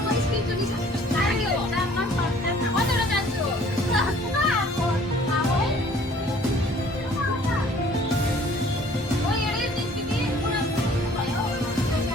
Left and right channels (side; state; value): both; normal; correlation 0.55